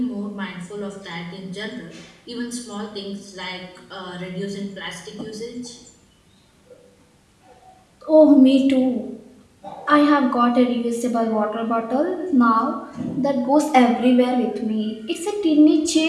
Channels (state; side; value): identical; both; correlation 1.00